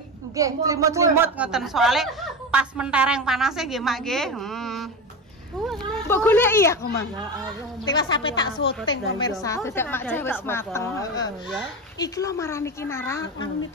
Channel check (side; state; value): both; normal; correlation 0.22